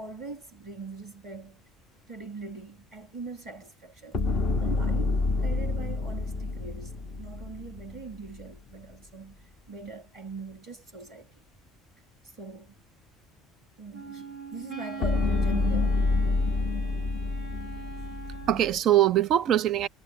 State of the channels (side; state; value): both; normal; correlation 0.54